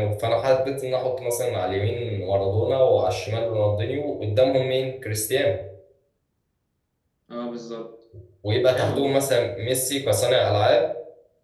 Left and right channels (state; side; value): identical; both; correlation 1.00